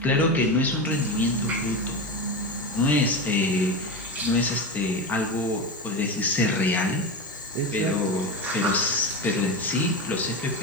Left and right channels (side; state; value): both; normal; correlation 0.20